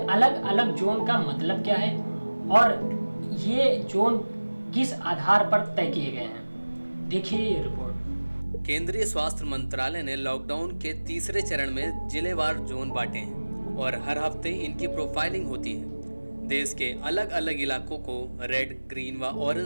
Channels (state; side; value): inverted; both; correlation -1.00